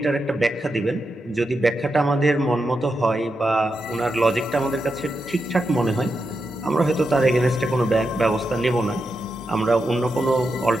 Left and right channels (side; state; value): both; normal; correlation 0.86